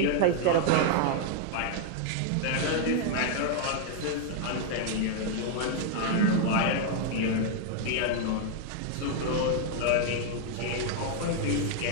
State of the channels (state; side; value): different; both; correlation 0.00